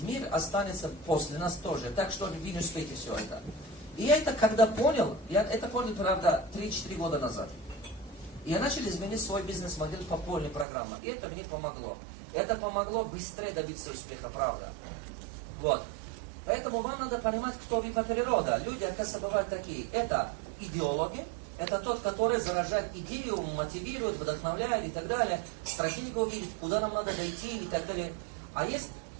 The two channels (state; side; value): drops out; left; at 10.7 s